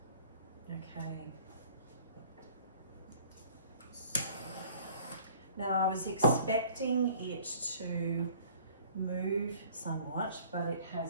Okay. Now I was expecting it to move somewhat, but it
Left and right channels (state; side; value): inverted; both; correlation -0.52